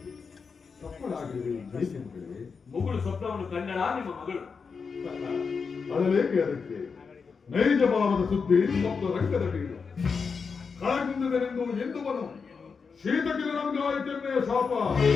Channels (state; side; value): quieter; right; 5.4 dB